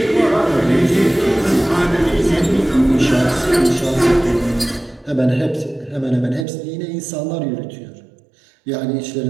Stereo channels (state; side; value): drops out; left; at 6.5 s